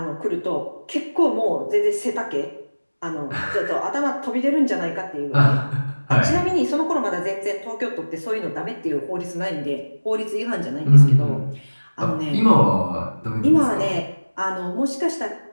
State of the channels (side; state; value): both; inverted; correlation -1.00